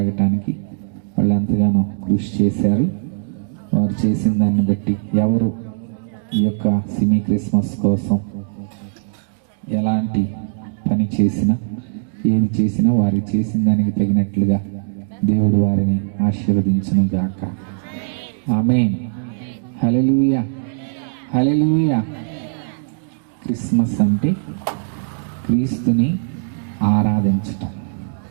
వాళ్ళు ఎంతగానో కృషి చేశారు. వారు చేసిన దాన్ని బట్టి ఎవరు ఈ యొక్క సిమీ క్రిస్మస్ కోసం ఎలాంటి పని చేసినా, ఏది చేసినా వారు చేసిన దానికి తగినట్లుగా దేవుడు వారిని ఆశీర్వదించును గాక. ఆమేన్. హల్లెలూయా, హల్లెలూయా. క్రిస్మస్ అంటే క్రీస్తుని ఆరాధించటం.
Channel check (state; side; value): silent; left; digital silence